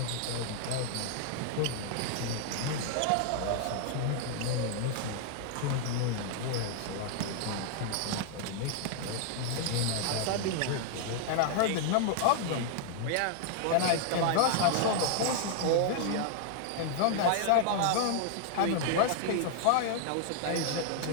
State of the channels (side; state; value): both; different; correlation -0.01